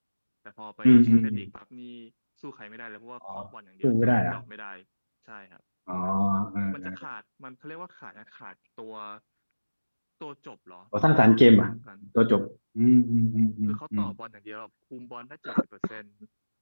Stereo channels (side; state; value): both; inverted; correlation -1.00